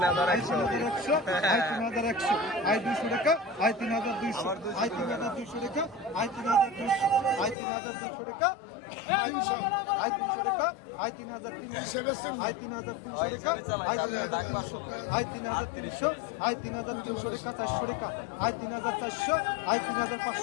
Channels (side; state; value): right; drops out; at 7.6 s